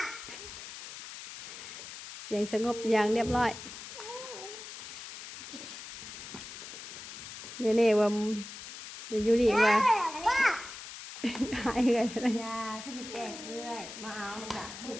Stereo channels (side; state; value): left; noise; hiss, 11 dB below the sound